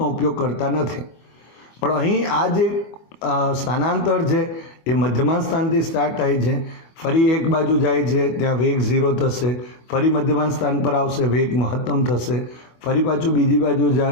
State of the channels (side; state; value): right; late; 24 ms